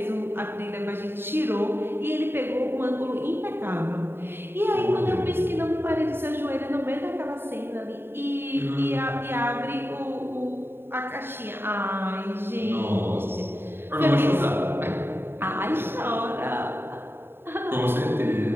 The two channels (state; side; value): late; left; 0.11 ms